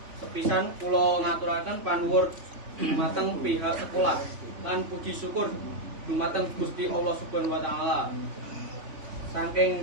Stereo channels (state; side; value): late; left; 3.7 ms